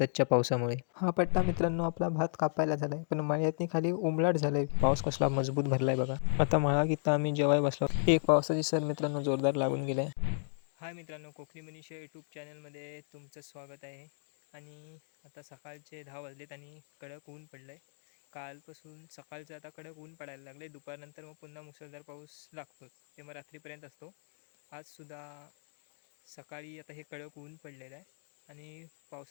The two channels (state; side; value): silent; right; digital silence